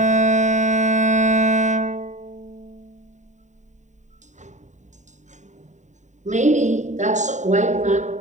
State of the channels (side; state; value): left; late; 0.34 ms